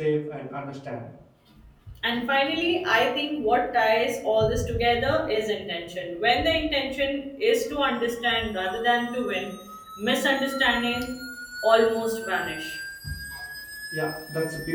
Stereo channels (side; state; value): both; identical; correlation 1.00